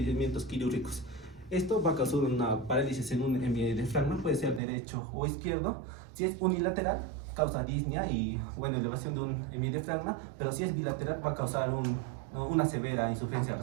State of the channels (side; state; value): left; drops out; at 4.6 s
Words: quirúrgicos. Esto va a causar una parálisis en un hemidiafragma, puede ser derecho o izquierdo. Si es unilateral, causa disnea y elevación de un hemidiafragma, pero si es bilateral va a causar una severa insuficiencia